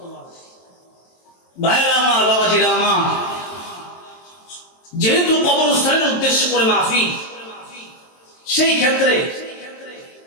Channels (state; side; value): late; right; 23 ms